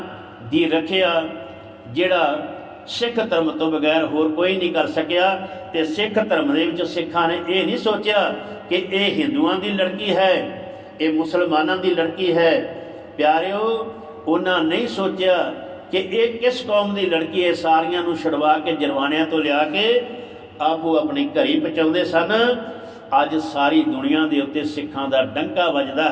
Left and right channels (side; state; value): both; identical; correlation 1.00